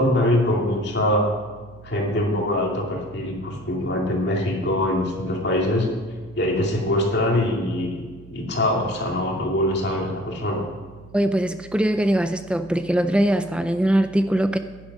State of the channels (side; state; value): right; noise; hum, 20 dB below the sound